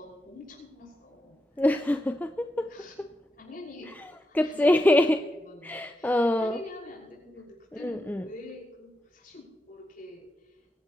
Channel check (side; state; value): both; normal; correlation 0.87